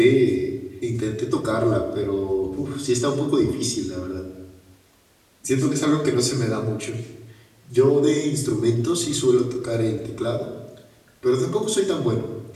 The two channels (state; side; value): identical; both; correlation 1.00